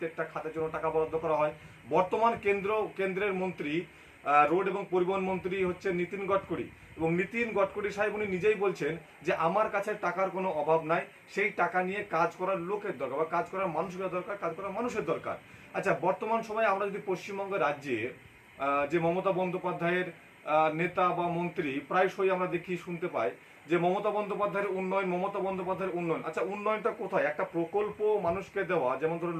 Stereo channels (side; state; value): both; identical; correlation 1.00